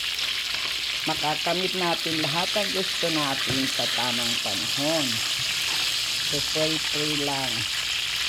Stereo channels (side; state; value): both; identical; correlation 1.00